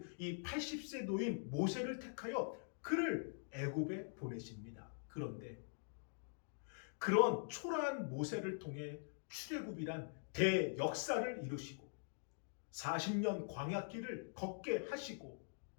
이 80세 노인 모세를 택하여 그를 애굽에 보내십니다. 그런데 그런 초라한 모세를 통해 출애굽이란 대역사를 이루시고 40년 광야길을 걷게 하시고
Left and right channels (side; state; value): right; silent; digital silence